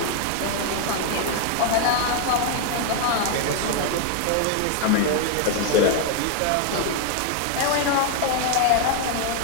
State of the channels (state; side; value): different; both; correlation 0.01